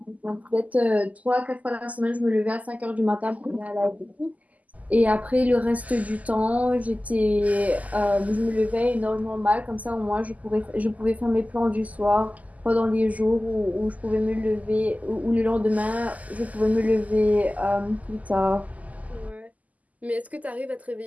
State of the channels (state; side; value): late; left; 0.075 ms